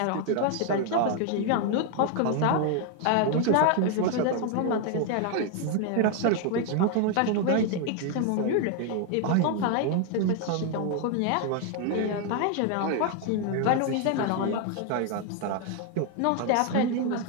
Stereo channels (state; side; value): different; both; correlation 0.00